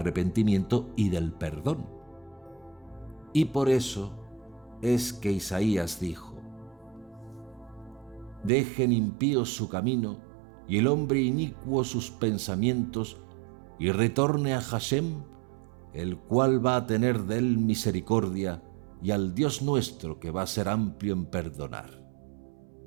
y del perdón. Y por eso es que Isaías dijo: dejen impíos su camino y el hombre inicuo sus pensamientos, y retorne a Hashem, el cual va a tener de él misericordia, y al Dios nuestro, que va a ser amplio en perdonar.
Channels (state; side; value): drops out; left; at 8.5 s